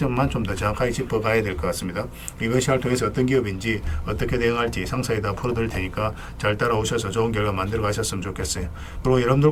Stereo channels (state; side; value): identical; both; correlation 1.00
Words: 좀 더 정확하게 짚어가야 될 것 같습니다. 이것을 통해서 어떤 기업인지 어떻게 대응할지 상세히 다 풀어드릴 테니까 잘 따라오셔서 좋은 결과 만들어 가셨으면 좋겠어요. 그리고